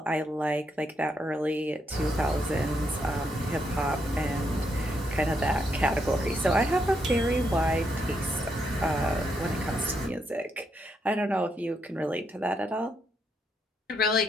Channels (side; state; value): both; normal; correlation 0.78